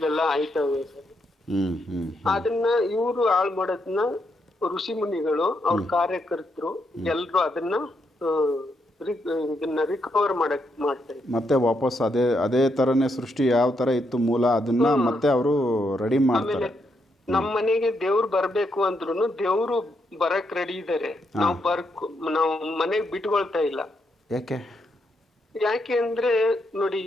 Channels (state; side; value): normal; both; correlation 0.79